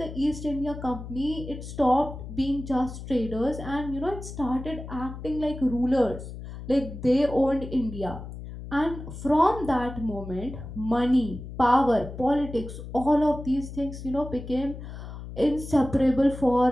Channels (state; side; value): noise; left; hum, 11 dB below the sound